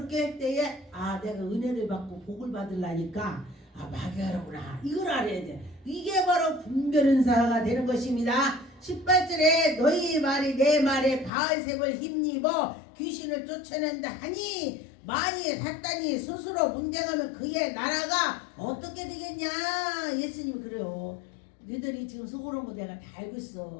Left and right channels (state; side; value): drops out; right; at 11.3 s